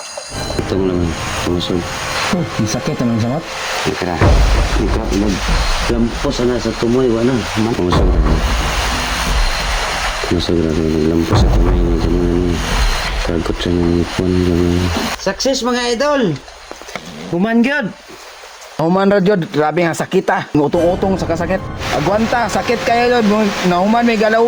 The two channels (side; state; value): both; identical; correlation 1.00